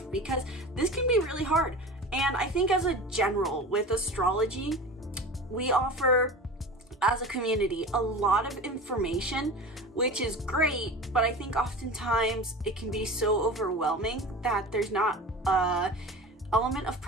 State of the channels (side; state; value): both; normal; correlation 0.33